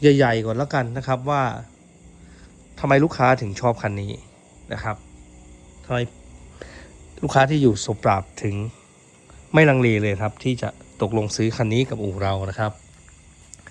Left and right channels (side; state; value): both; identical; correlation 1.00